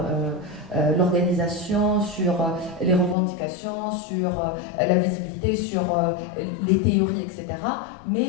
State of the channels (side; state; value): right; drops out; at 3.2 s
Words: l'organisation, sur les revendications, sur la visibilité, sur les théories, etc.